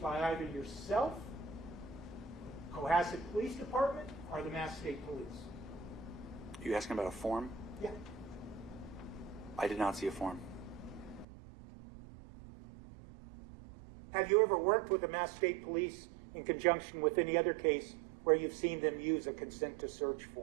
by either yourself, Cohasset Police Department, or the Mass State Police? You asking about a form? Yeah. I did not see a form. Have you ever worked with the Mass State Police in conjunction with any other case where you've seen them use a consent to search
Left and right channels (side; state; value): left; drops out; at 11.2 s